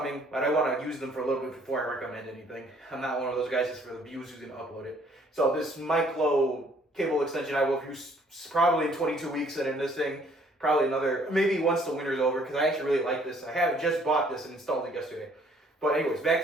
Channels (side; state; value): both; normal; correlation 0.61